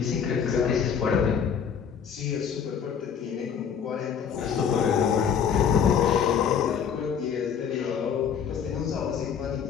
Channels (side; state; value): right; quieter; 7.5 dB